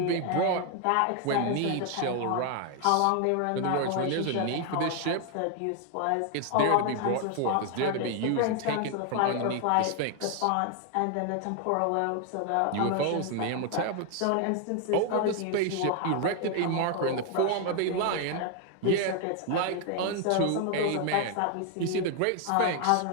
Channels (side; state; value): both; different; correlation 0.01